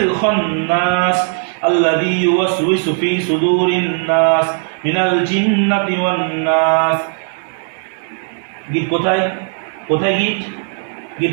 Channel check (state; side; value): silent; left; 64 dB below the other